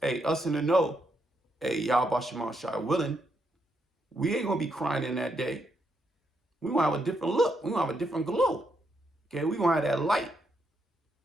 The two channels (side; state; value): both; normal; correlation 0.79